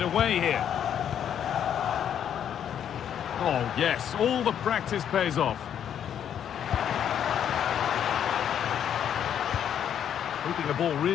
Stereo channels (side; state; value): right; quieter; 9.3 dB